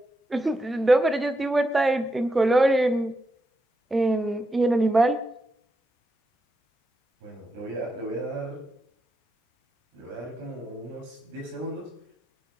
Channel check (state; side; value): normal; both; correlation 0.86